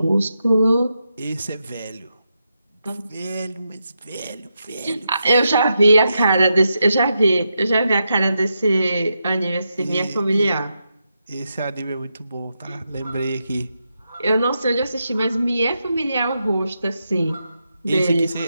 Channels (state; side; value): inverted; both; correlation -0.85